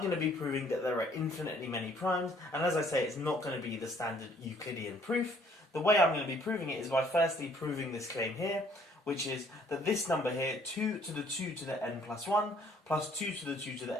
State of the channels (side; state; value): both; normal; correlation 0.61